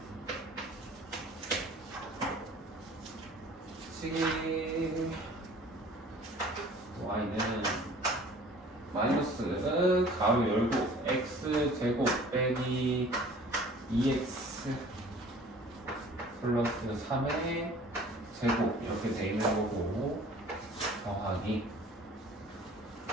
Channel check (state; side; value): normal; both; correlation 0.49